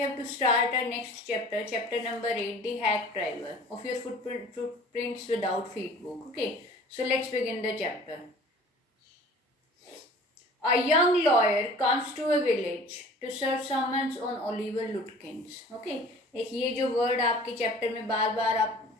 to start our next chapter, chapter number 8, the hack driver of your footprints without feet book. Okay, so let's begin the chapter. A young lawyer comes to a village to serve summons on Oliver Lutkins. Okay, एक ये जो word आपके chapter में बार बार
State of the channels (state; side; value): normal; both; correlation 0.46